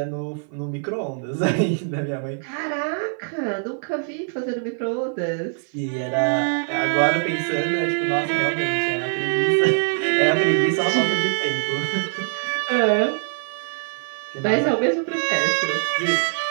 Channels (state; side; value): silent; left; 56 dB below the other